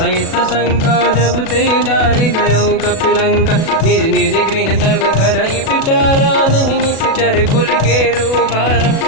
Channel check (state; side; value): late; right; 37 ms